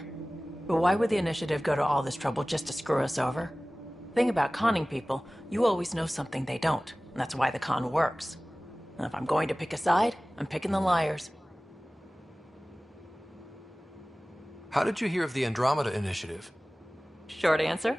But why would the initiative go to all this trouble just to screw us over? Thing about conning people, you always know something they don't. And that's why the con works. And if I'm going to pick a side, I'm picking the liars. How did you hear of the Andromeda initiative? Short answer,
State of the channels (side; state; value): both; normal; correlation 0.98